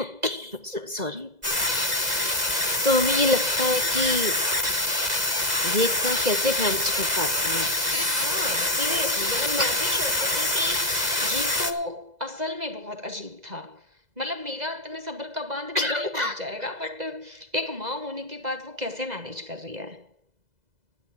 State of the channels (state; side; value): late; left; 2.0 ms